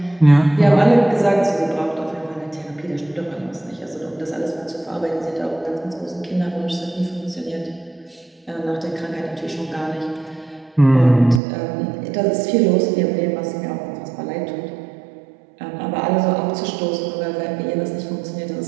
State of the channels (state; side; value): drops out; left; at 11.4 s